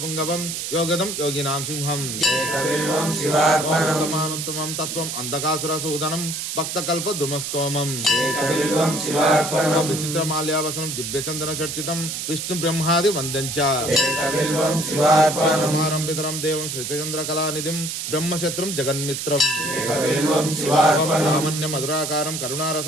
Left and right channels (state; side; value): noise; right; hiss, 4 dB below the sound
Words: యోగదం యోగినాం సింహం ఏకబిల్వం శివార్పణం ఉత్తమానుత్తమం తత్వం అంధకాసురసూదనం భక్తకల్ప ద్రుమస్తోమం ఏకబిల్వం శివార్పణం విచిత్రమాల్యావసనం దివ్యచందన చర్చితం విష్ణు బ్రహ్మాది వందంచ ఏకబిల్వం శివార్పణం కుమారం పితరం దేవం శ్రీచంద్ర కళానిధిం బ్రహ్మశత్రుం జగన్మిత్రం ఏకబిల్వం శివార్పణం లావణ్య మధురాకారం